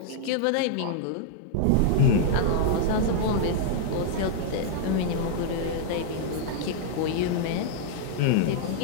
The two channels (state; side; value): different; both; correlation -0.01